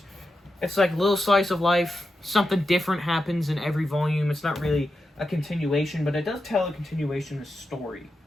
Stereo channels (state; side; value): normal; both; correlation 0.89